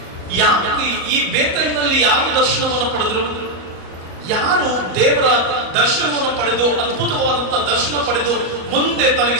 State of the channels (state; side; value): late; left; 38 ms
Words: ಯಾಕೆ ಈ ಬೇತೇಲಿನಲ್ಲಿ ಯಾರು ದರ್ಶನವನ್ನು ಪಡೆದ್ರು? ಯಾರು ದೇವರ ದರ್ಶನವನ್ನು ಪಡೆದು, ಅದ್ಭುತವಾದಂತ ದರ್ಶನ ಪಡೆದು, ಮುಂದೆ